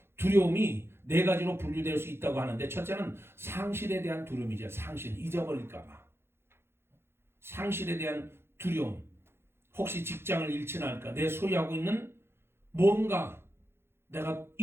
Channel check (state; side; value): late; left; 0.12 ms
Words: 두려움이 4가지로 분류될 수 있다고 하는데 첫째는 상실에 대한 두려움이죠. 상실, 잊어버릴까 봐. 상실에 대한 두려움. 혹시 직장을 잃지는 않을까? 내 소유하고 있는 뭔가 내가